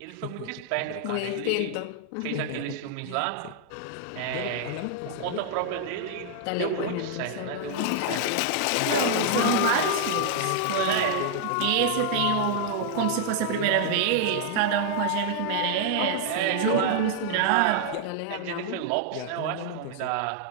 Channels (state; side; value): different; both; correlation -0.01